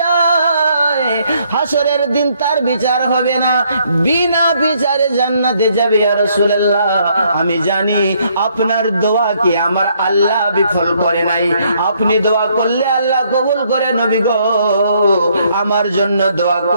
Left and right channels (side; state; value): both; inverted; correlation -0.69